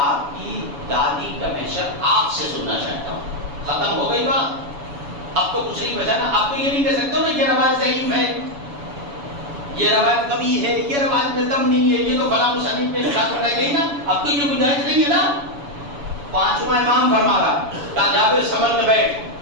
کی دادی کا محشر آپ سے سننا چاہتا ہوں. ختم ہو گئی بات، اب تو کچھ نہیں بچا نا. اب تو یہ نہیں کہہ سکتے نا یہ روایت ضعیف ہے، یہ روایت کبھی ہے، یہ روایت میں دم نہیں ہے، یہ تو فلاں مصنف میں شاد بتائی گئی نا. اب تو یہ گنجائش نہیں ہے نا. پانچواں امام فرما رہا کہا جابر سنبھل کے بیٹھ،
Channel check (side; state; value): left; late; 7.1 ms